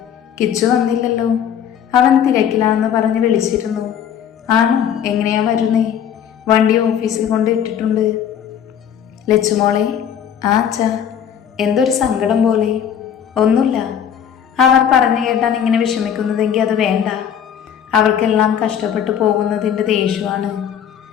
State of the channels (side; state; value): right; quieter; 8.9 dB